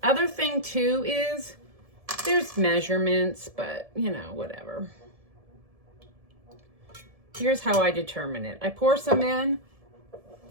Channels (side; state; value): left; late; 1.7 ms